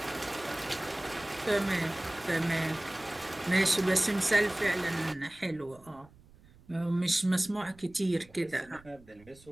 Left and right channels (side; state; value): right; noise; rumble, 25 dB below the sound